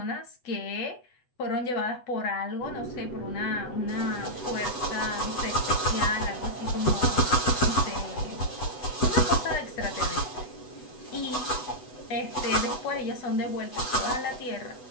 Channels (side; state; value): right; late; 8.1 ms